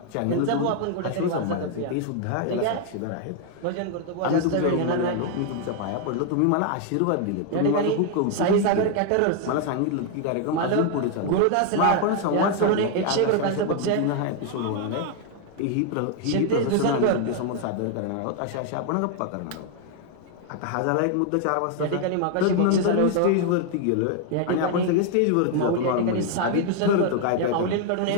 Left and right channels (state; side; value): different; both; correlation 0.00